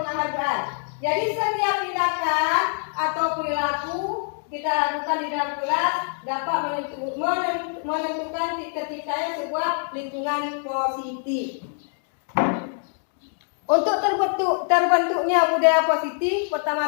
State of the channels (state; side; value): silent; right; 62 dB below the other